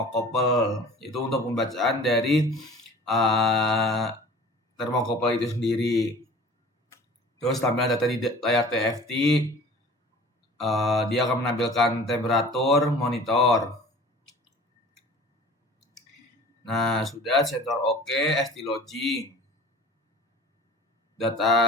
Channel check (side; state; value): both; normal; correlation 0.44